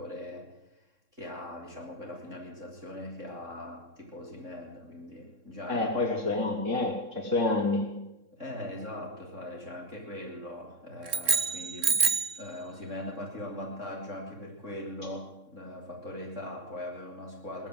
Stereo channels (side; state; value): left; late; 3.6 ms